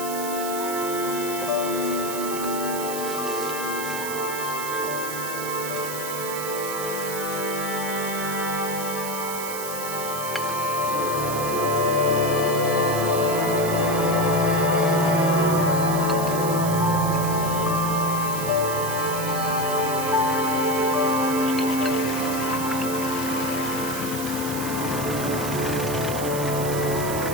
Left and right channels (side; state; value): right; noise; hiss, 7 dB below the sound